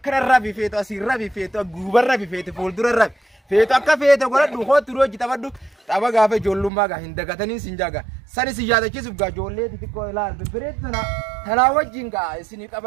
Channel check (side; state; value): left; drops out; at 6.7 s